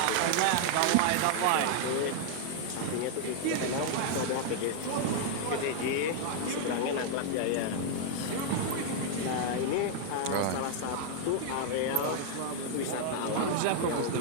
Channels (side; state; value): both; different; correlation 0.00